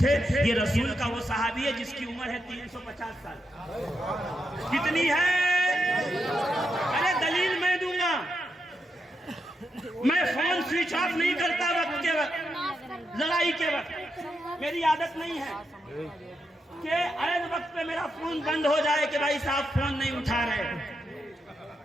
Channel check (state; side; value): normal; both; correlation 0.84